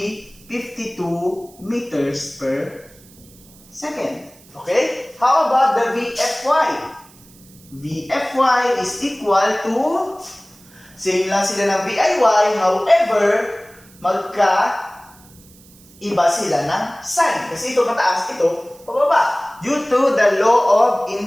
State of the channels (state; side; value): noise; right; hiss, 25 dB below the sound